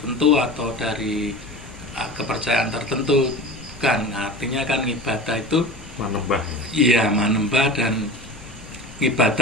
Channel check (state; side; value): normal; both; correlation 0.33